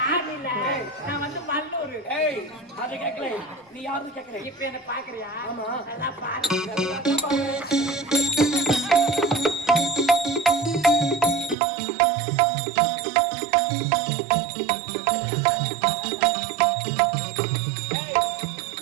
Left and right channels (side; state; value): left; drops out; at 11.6 s